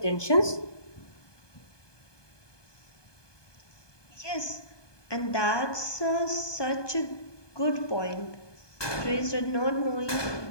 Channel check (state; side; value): late; right; 1.2 ms